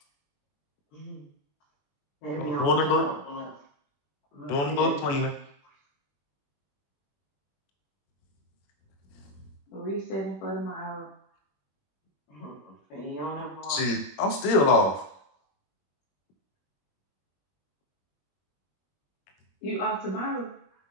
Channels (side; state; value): right; late; 21 ms